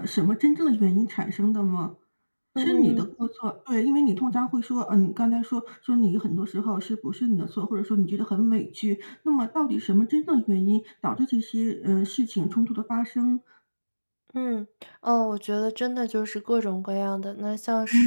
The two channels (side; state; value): both; inverted; correlation -1.00